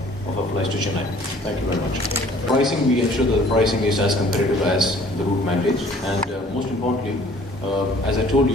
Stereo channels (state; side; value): normal; both; correlation 0.54